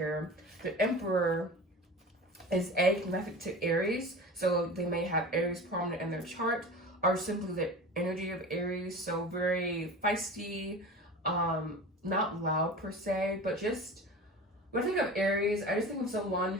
the Emperor is connected to Aries, so they may have Aries prominent in their chart, or simply the energy of Aries, so very feisty, not loud per se, but just, when I think of Aries, I just think of someone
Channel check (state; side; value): normal; both; correlation 0.34